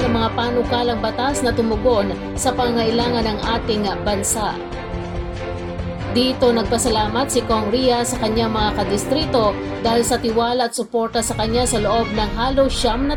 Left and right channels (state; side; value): identical; both; correlation 1.00